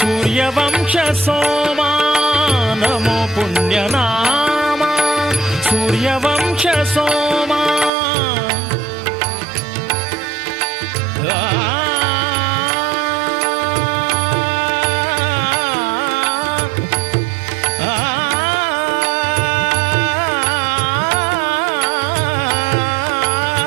सोमा नमो पुण्यनाम सूर्यवंश सोमा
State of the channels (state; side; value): drops out; left; at 7.9 s